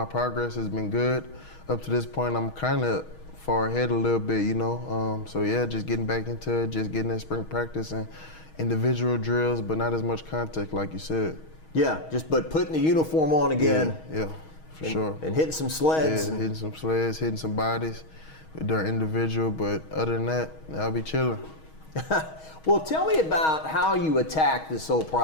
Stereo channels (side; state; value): right; late; 6.3 ms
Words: progress has been good. Up to this point, I'm kind of far ahead a little bit, you know. So yeah, just getting back into it, just getting that spring practice and individual drills, but not as much contact like you said. Yeah, but putting the uniform on again. Yeah, for sure. And hitting some sleds. Yeah, hitting some sleds, hitting some bodies during individual, but other than that, I'll be chilling. Well, tell me about how you attack this whole